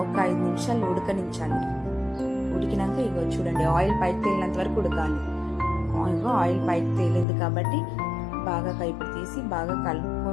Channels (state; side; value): drops out; right; at 7.2 s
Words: ఒక 5 నిమిషాలు ఉడకనించాలి. ఉడికినాక ఇగో చూడండి ఆయిల్ పైకి తేలినంత వరకు ఉడకాలి. ఆయిల్ పైకి తేలింది కాబట్టి బాగా కైపు తీసి బాగా